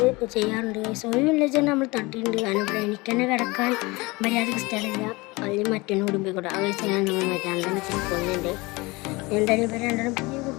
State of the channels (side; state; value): right; quieter; 23.8 dB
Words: ചെയ്യാറുണ്ട്. ഒരു വില്ലേജ് നമ്മൾ തട്ടിയിട്ടുണ്ട്. കാരണം ഇവിടെ എനിക്ക് തന്നെ കിടക്കാൻ മര്യാദക്ക് സ്ഥലമില്ല. അല്ലെങ്കിൽ മറ്റൊന്നും കൂടി പോയിക്കോട്ടെ. ആ കഴിച്ച് ഞാൻ നമ്മൾ രണ്ടെണ്ണത്തിന് കൊന്നുണ്ട്. എന്തായാലും ഇവർ രണ്ടെണ്ണം പുതിയ